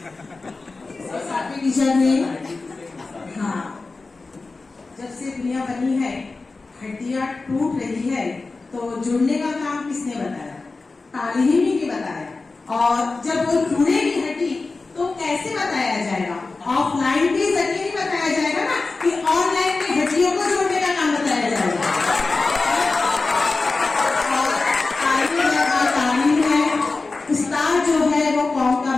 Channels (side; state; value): right; quieter; 3.7 dB